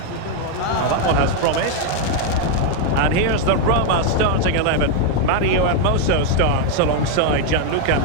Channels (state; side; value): different; both; correlation 0.01